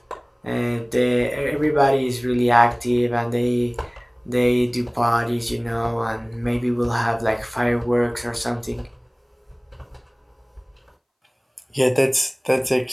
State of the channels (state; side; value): identical; both; correlation 1.00